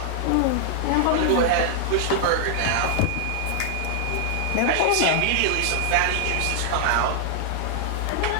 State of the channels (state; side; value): different; both; correlation -0.01